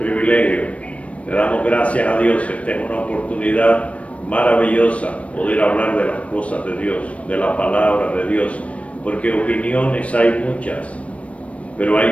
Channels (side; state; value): right; late; 0.064 ms